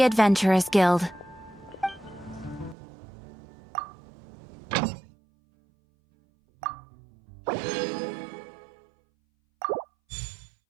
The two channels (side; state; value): left; drops out; at 2.8 s